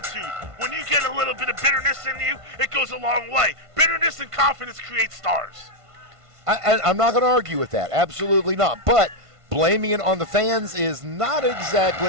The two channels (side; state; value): left; late; 1.5 ms